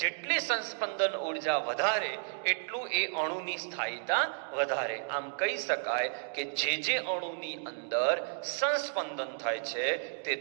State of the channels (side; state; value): left; silent; digital silence